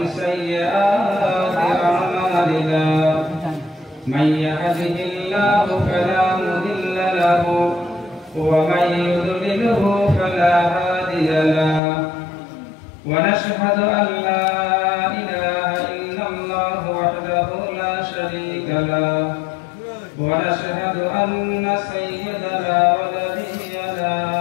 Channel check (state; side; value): drops out; right; at 11.8 s